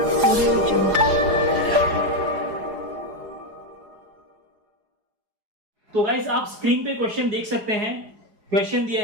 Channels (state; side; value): late; left; 4.8 ms